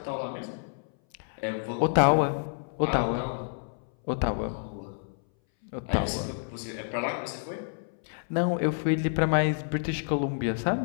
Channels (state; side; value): silent; right; 58 dB below the other